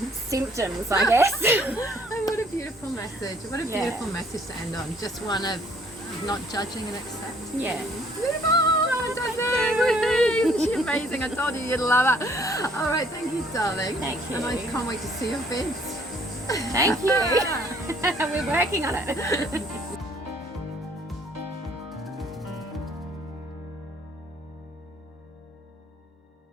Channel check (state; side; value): normal; both; correlation 0.61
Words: symptoms, I guess. Oh, what a beautiful message. What a beautiful message to end on. Just one of not judging and accepting. Yeah. Beautiful. She's amazing. I told you you'd love her. All right, thank you, darling. Thank you. And I can't wait to see your vids. Thank you. We're working on it.